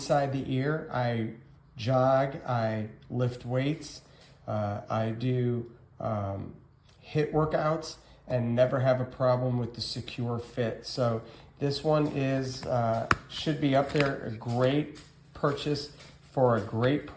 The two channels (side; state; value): both; identical; correlation 1.00